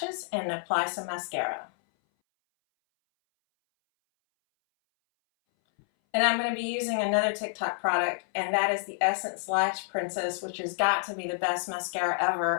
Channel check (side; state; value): right; silent; 59 dB below the other